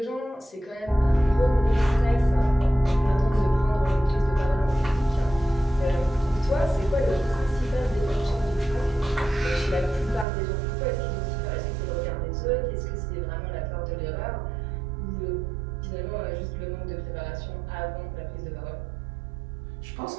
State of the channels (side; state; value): left; drops out; at 10.2 s